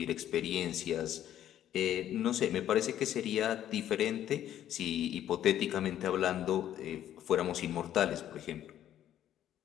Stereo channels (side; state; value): right; quieter; 11.4 dB